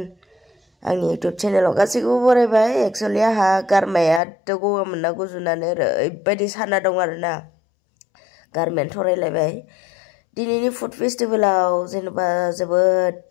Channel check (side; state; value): right; drops out; at 4.2 s